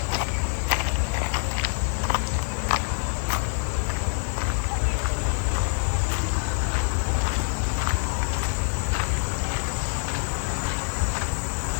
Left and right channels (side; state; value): right; silent; digital silence